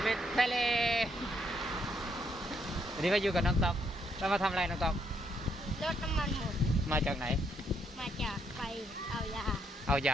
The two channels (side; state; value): both; normal; correlation 0.74